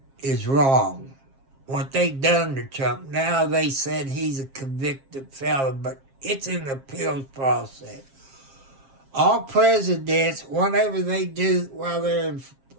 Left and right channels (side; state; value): left; late; 7.5 ms